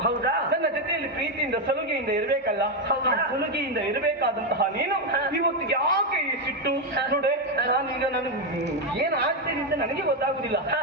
ಹೌದಾ? ನನ್ನ ಜೊತೆಯಲ್ಲಿ ಪ್ರೀತಿಯಿಂದ ಸಲುಗೆಯಿಂದ ಇರಬೇಕಲ್ಲ. ಸಲುಗೆಯಿಂದ ಇರಬೇಕಾದಂತಹ ನೀನು ಇವತ್ತು ಯಾಕೆ ಈ ಸಿಟ್ಟು? ನೋಡೆ, ನಾನೀಗ ನನಗೆ ಏನ್ ಆಗ್ತೇನೆ ಅಂತ ನನಗೆ ಗೊತ್ತಾಗುದಿಲ್ಲ.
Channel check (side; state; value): both; normal; correlation 0.06